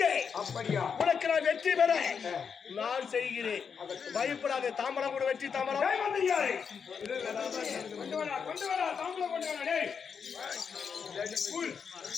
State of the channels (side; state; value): right; quieter; 6.4 dB